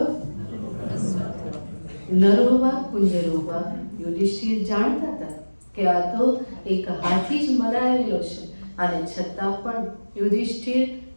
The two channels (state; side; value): inverted; both; correlation -1.00